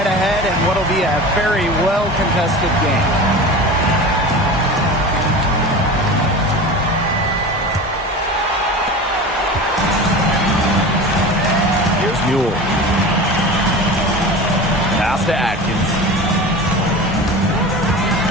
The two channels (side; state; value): both; normal; correlation 0.32